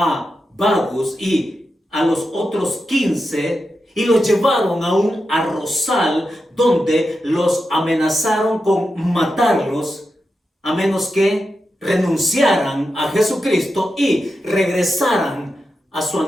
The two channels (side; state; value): both; normal; correlation 0.89